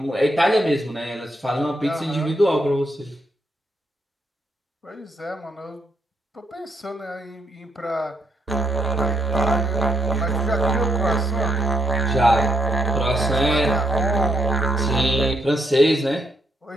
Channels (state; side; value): normal; both; correlation 0.77